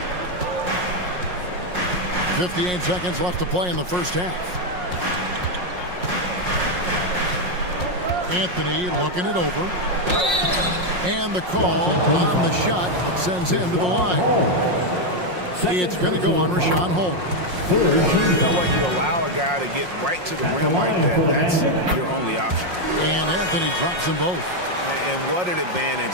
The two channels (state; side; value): late; left; 5.6 ms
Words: 58 seconds left to play in the first half. Anthony looking it over. And the call on the shot that sends him to the line. It's going to go on Rashawn Holmes. You know what? You allow a guy to get right to the rim like that. That's your only option. And Anthony drops them both. And what an